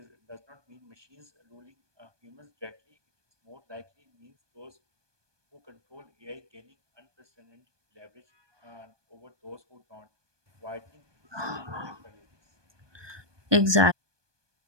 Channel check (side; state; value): left; late; 1.2 ms